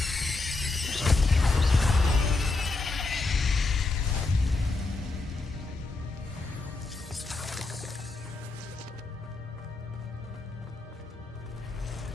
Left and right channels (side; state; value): right; quieter; 3.5 dB